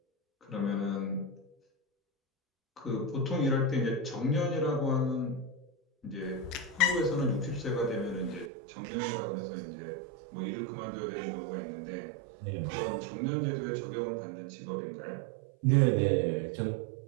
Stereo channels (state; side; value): drops out; left; at 8.5 s